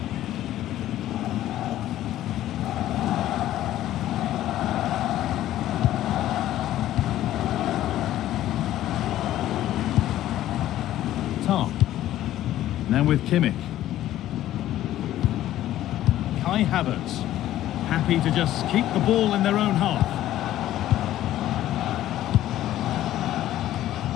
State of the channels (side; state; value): right; quieter; 13.4 dB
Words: Tar. Now with Kimmich. Kai Havertz. Happy to just keep the ball in their own half.